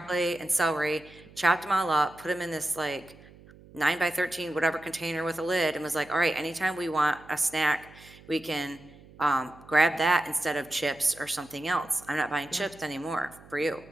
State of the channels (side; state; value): right; noise; hum, 22 dB below the sound